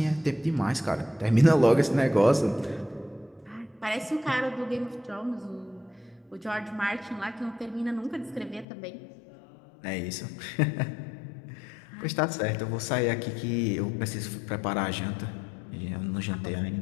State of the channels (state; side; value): drops out; right; at 8.7 s